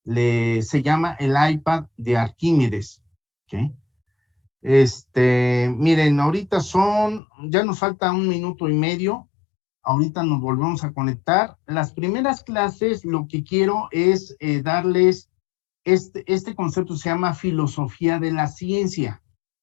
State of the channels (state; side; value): drops out; right; at 7.2 s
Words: se llama El iPad de Arquímedes, ¿ok? Miren, ahorita ya nos falta 1 minuto y medio, ahorita nos volvemos a conectar. Las primeras clases, lo que quiero es darles, este concepto se llama filosofía de la ciencia.